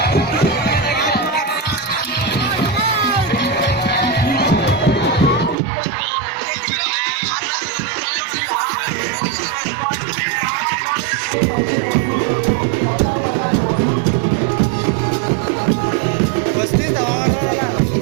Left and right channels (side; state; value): left; drops out; at 5.6 s